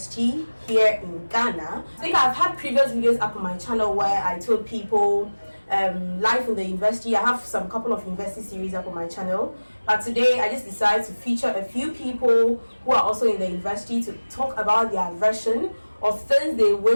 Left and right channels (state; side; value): inverted; both; correlation -1.00